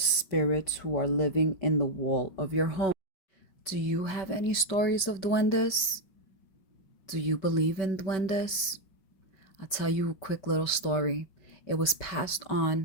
spirits who are living in the wall of your home. Do you have any stories of duendes? Do you believe in duendes? I'll tell you a quick little story. It was passed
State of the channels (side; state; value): right; late; 5.2 ms